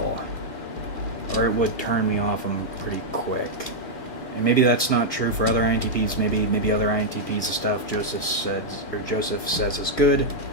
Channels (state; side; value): late; right; 2.1 ms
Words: or it would turn me off him pretty quick. And maybe that's not true for other INTPs. Maybe other INTPs, the stuff Joseph says is good.